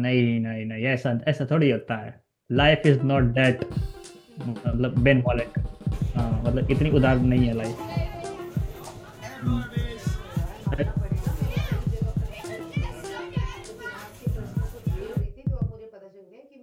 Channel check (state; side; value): identical; both; correlation 1.00